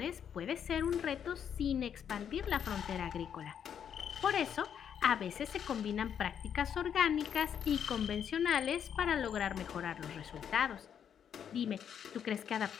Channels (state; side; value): quieter; right; 8.4 dB